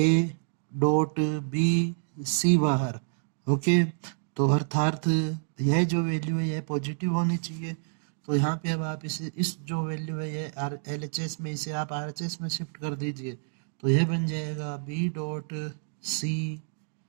डॉट बी, सी बाहर। ओके, तो अर्थात यह जो वैल्यू है यह पॉजिटिव होनी चाहिए। तो यहाँ पे अब आप इस जो वैल्यू है ये LHS में, इसे आप RHS में शिफ्ट कर दीजिए। तो यह बन जाएगा बी डॉट सी,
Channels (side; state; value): left; silent; digital silence